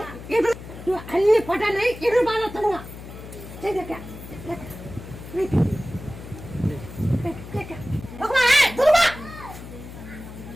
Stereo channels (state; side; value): noise; left; hum, 13 dB below the sound